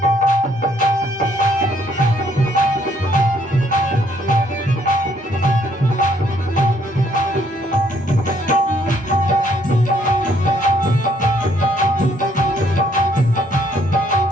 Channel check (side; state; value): both; normal; correlation 0.67